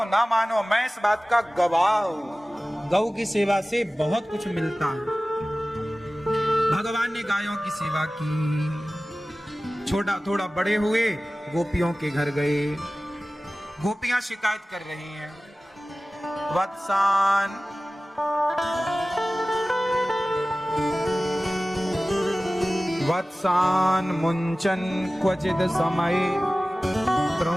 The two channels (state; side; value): normal; both; correlation 0.97